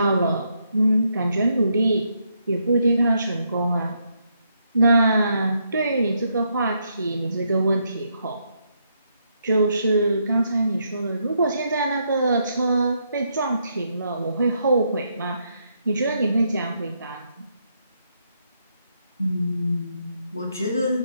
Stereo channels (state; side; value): inverted; both; correlation -0.77